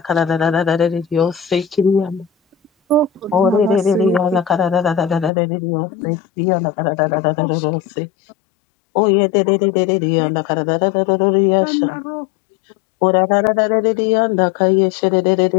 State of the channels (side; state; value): right; drops out; at 5.3 s